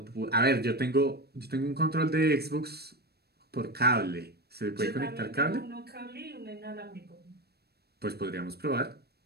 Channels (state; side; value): late; left; 0.47 ms